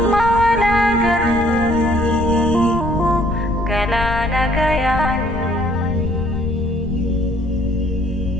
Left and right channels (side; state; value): left; noise; rumble, 7 dB below the sound